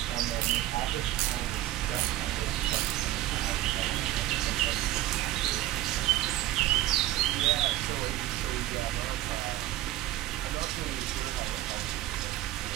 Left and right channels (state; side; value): quieter; left; 14.8 dB